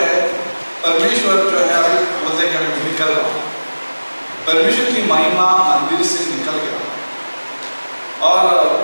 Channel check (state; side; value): inverted; both; correlation -1.00